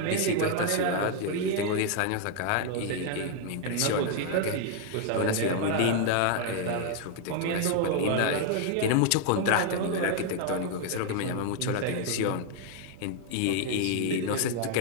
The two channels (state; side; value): different; both; correlation 0.00